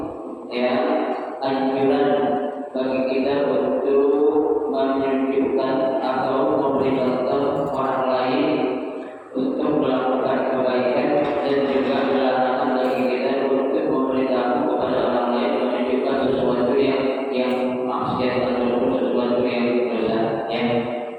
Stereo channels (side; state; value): both; identical; correlation 1.00